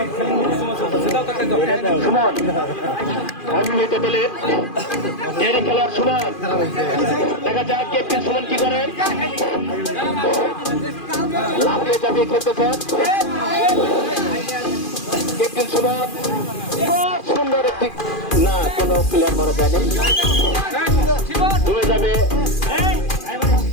সুমন অবিবাহিত দলের খেলোয়াড় সুমন। দেখা যাক ক্যাপ্টেন সুমন কি করেন। লাফিয়ে চাপিয়ে খেলতেছেন ক্যাপ্টেন সুমন। সুন্দর একটি না, কোনো প্লেয়ার মারা যায়নি, ডুবে যাবে।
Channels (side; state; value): right; late; 2.4 ms